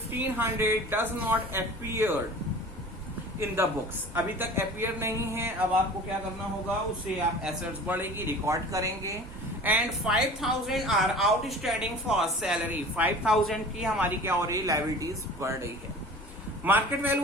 does not appear in the books, अभी तक अपीयर नहीं है। अब आपको क्या करना होगा, उसे आप एसेट्स बढ़ेगी रिकॉर्ड करेंगे। And 5000 are outstanding for salary, 5000 की हमारी क्या हो रही है, लायबिलिटीज बढ़ रही है। मार्केट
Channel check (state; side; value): normal; both; correlation 0.41